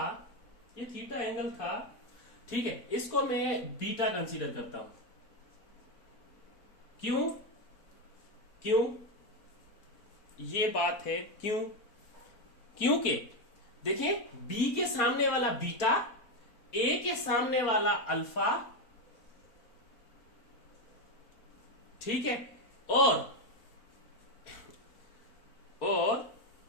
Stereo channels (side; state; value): right; late; 4.2 ms